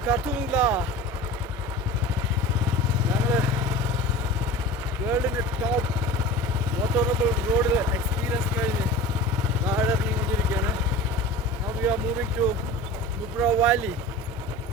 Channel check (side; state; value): both; normal; correlation 0.36